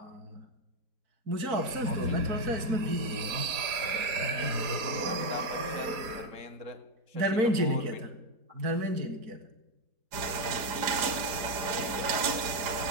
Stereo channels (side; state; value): left; late; 4.9 ms